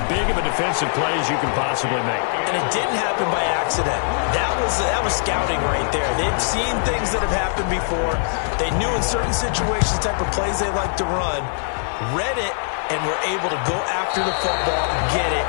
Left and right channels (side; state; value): right; silent; 59 dB below the other